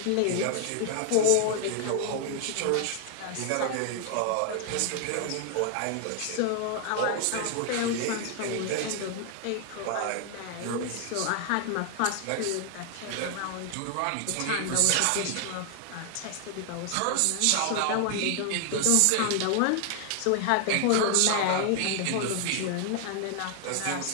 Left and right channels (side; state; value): both; different; correlation 0.00